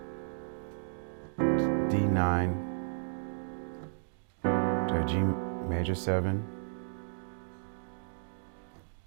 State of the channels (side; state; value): left; silent; digital silence